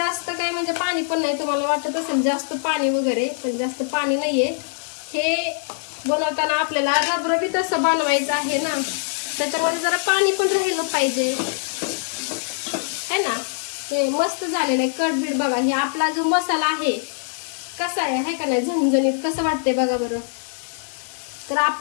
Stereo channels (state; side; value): silent; right; 64 dB below the other